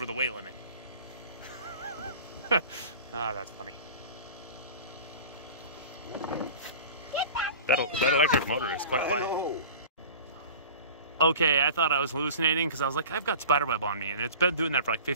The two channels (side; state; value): both; inverted; correlation -0.39